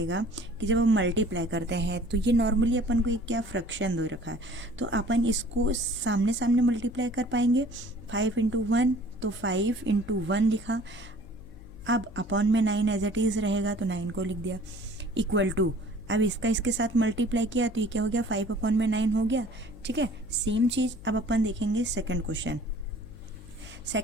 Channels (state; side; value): noise; left; hum, 18 dB below the sound